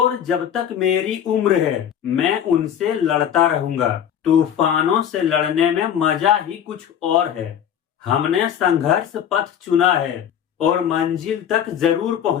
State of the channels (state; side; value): quieter; right; 9.3 dB